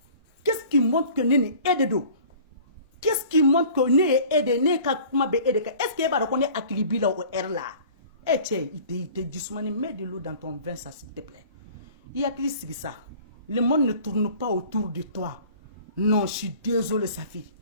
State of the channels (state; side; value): inverted; both; correlation -0.46